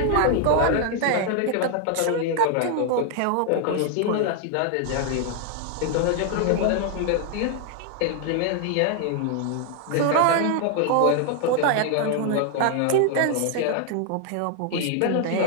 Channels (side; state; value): both; different; correlation 0.00